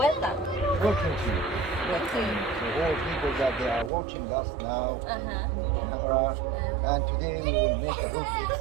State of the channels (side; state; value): left; drops out; at 3.9 s